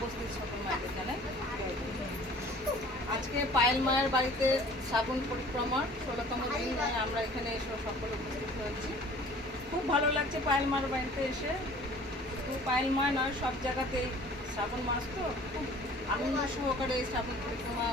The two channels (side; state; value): both; normal; correlation 0.49